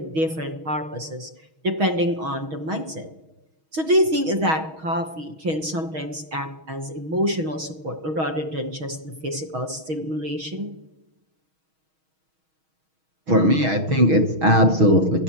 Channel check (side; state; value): left; late; 6.3 ms